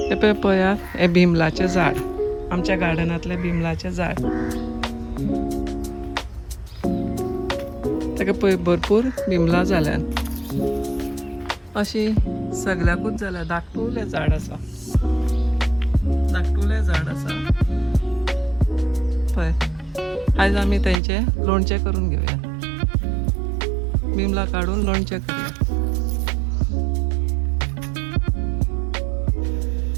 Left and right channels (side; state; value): left; drops out; at 21.0 s